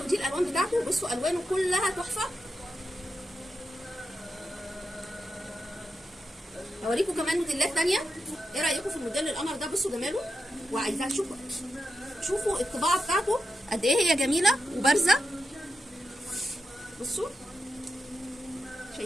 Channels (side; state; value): both; normal; correlation 0.88